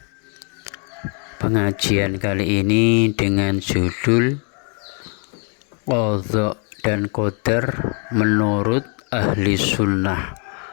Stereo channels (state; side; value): quieter; right; 38.7 dB